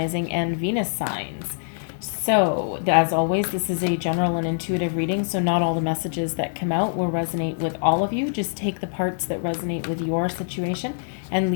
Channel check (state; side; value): silent; right; digital silence